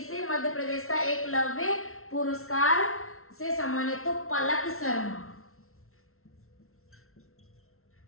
मध्य प्रदेश का एकलव्य पुरस्कार से सम्मानित, तो पलक शर्मा।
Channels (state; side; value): late; right; 0.62 ms